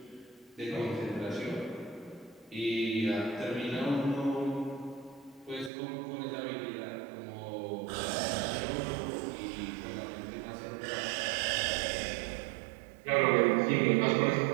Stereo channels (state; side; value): drops out; left; at 5.7 s